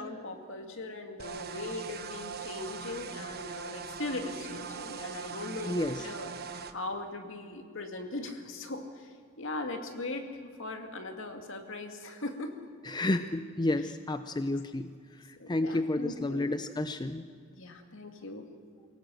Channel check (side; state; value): both; normal; correlation 0.47